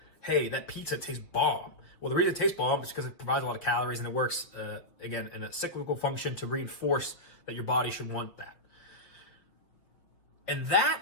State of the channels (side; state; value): right; late; 5.9 ms